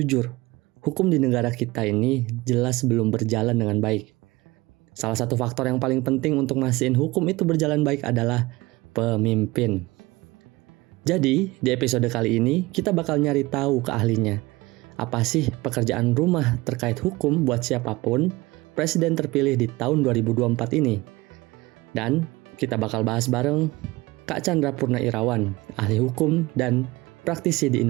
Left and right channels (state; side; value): quieter; left; 21.1 dB